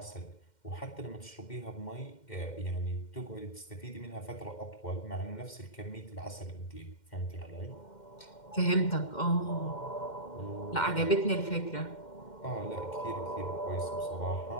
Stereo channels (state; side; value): late; right; 2.1 ms